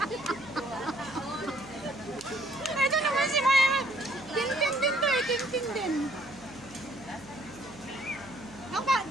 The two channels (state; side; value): noise; right; hum, 23 dB below the sound